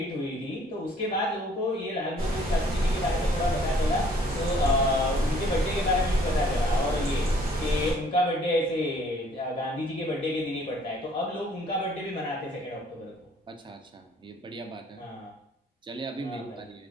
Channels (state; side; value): normal; both; correlation 0.59